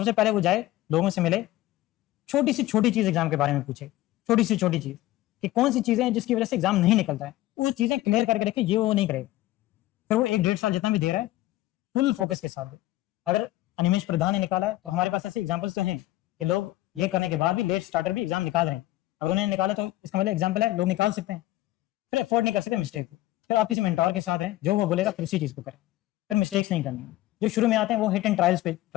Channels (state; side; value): quieter; right; 16.3 dB